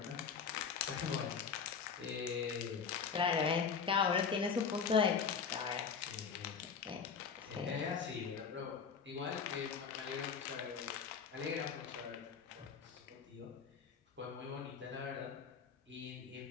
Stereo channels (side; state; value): right; quieter; 6.1 dB